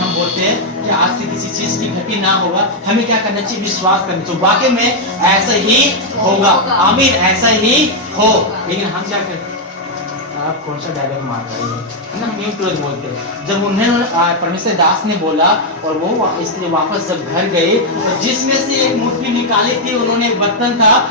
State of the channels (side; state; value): both; normal; correlation -0.01